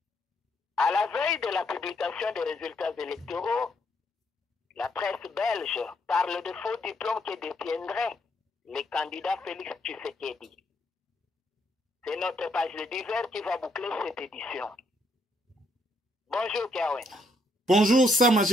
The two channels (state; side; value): normal; both; correlation 0.73